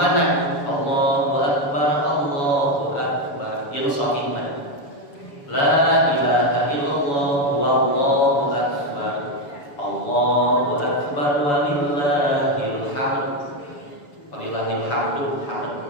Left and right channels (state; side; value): late; right; 7.1 ms